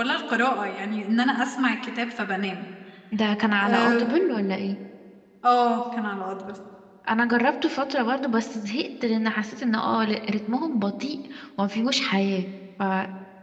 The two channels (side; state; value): both; identical; correlation 1.00